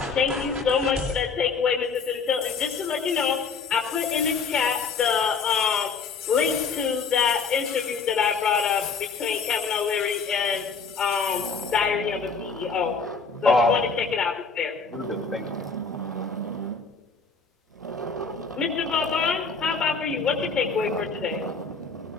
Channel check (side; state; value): right; quieter; 5.1 dB